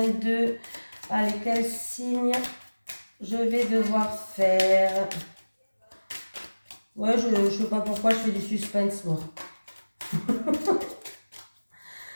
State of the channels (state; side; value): inverted; both; correlation -1.00